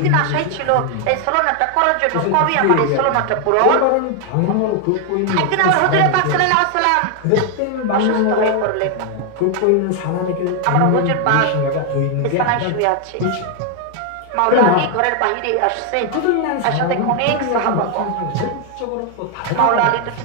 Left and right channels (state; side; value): different; both; correlation 0.00